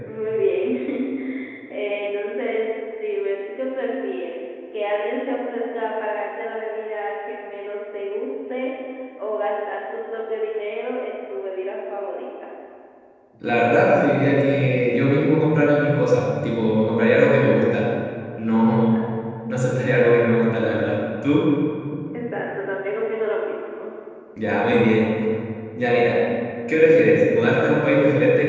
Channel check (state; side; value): identical; both; correlation 1.00